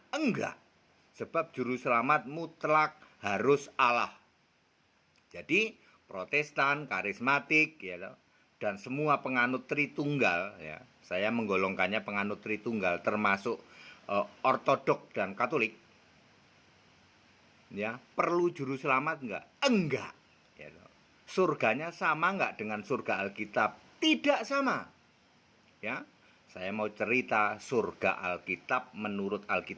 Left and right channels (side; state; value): both; identical; correlation 1.00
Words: Enggak. Sebab juru selamat mutlak harus Allah. Jadi, Protestan, karismatik, ya, dan semua penganut Tritunggal, ya, saya menggolongkannya penganut Tritunggal, termasuk Ortodoks dan Katolik. Ya, perlu juru selamat enggak? Enggak. Ya, surganya sama enggak dengan surga Alkitab? Tidak sama. Ya, saya mau cerita surga Alkitab. Menurut